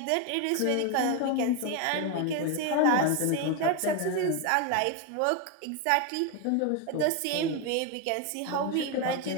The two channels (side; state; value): both; different; correlation 0.01